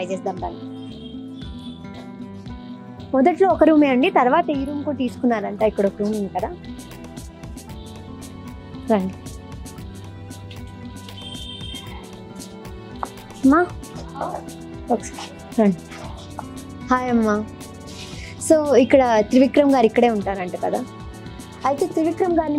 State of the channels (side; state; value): both; identical; correlation 1.00